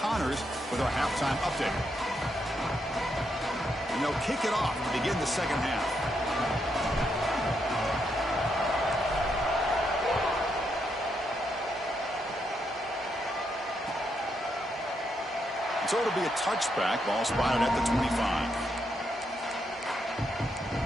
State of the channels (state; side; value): normal; both; correlation 0.79